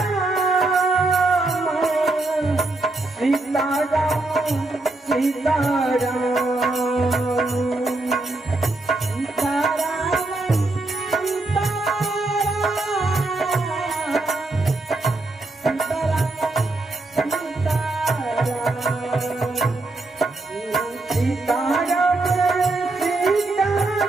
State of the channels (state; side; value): quieter; left; 3.0 dB